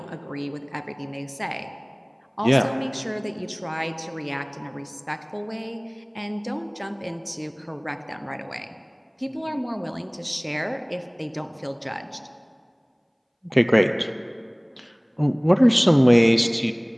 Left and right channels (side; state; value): both; identical; correlation 1.00